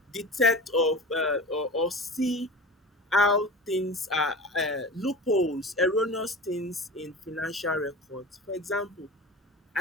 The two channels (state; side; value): normal; both; correlation 0.34